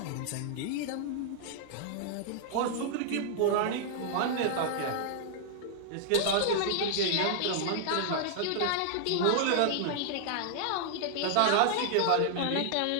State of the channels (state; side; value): different; both; correlation -0.01